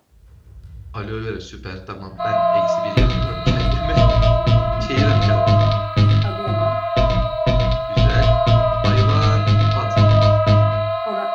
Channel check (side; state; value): both; identical; correlation 1.00